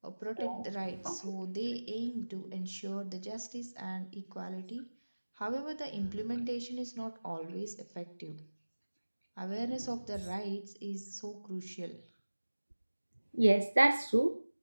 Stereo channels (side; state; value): both; inverted; correlation -1.00